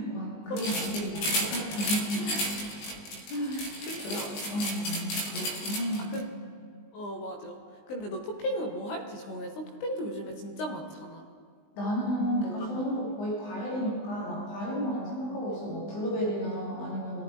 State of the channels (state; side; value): late; right; 19 ms